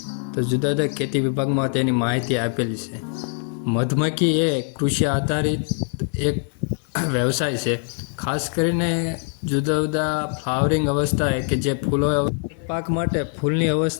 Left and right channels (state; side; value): silent; right; 56 dB below the other